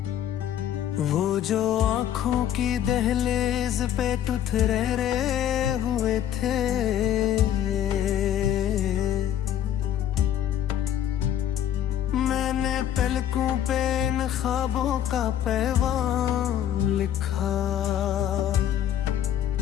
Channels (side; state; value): right; quieter; 10.7 dB